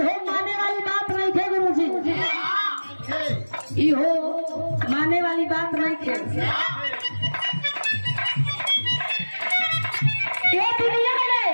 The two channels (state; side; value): inverted; both; correlation -1.00